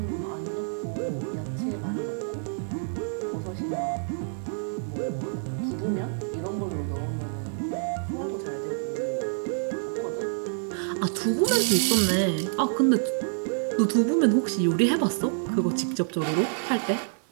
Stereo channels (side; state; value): left; silent; digital silence